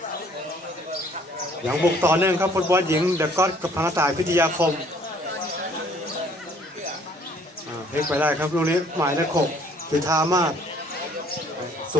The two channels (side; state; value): both; normal; correlation 0.59